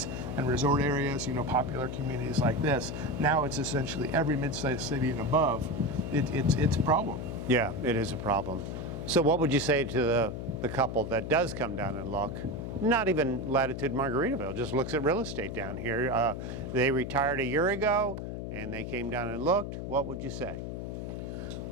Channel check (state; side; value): noise; left; hum, 6 dB below the sound